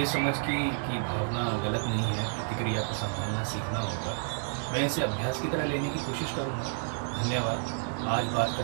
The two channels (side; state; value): left; silent; digital silence